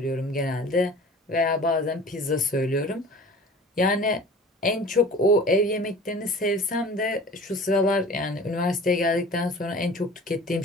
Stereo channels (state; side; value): normal; both; correlation 0.42